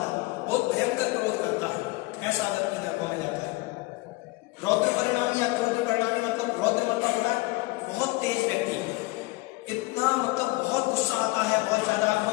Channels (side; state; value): right; quieter; 22.4 dB